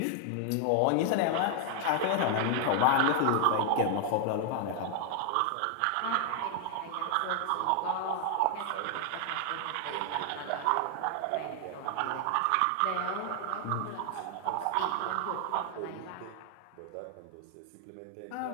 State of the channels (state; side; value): different; both; correlation 0.00